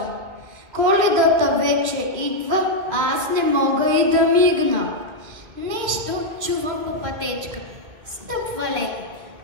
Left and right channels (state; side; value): late; left; 2.2 ms